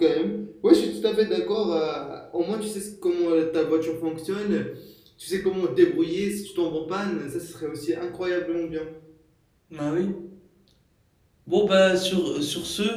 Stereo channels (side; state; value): both; identical; correlation 1.00